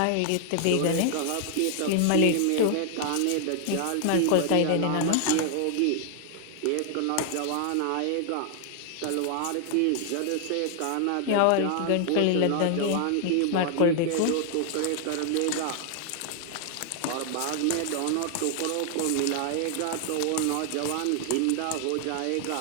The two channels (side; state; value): both; different; correlation 0.00